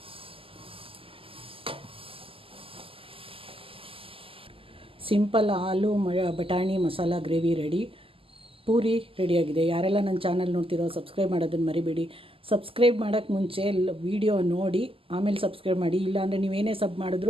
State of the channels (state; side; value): late; left; 0.26 ms